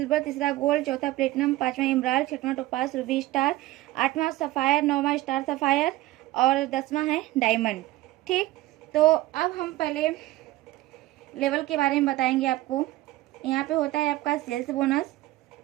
तीसरा गोल्ड, चौथा प्लेटिनम, पांचवा इमराल्ड, छठवां टोपाज, रूबी स्टार, आठवां सफायर, नौवां स्टार सफायर और 10वां है डायमंड। ठीक, तो अब हम पहले लेवल के बारे में बताएंगे आपको। यहाँ पे होता है आपका सेल्स बोनस,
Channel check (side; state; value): left; quieter; 17.0 dB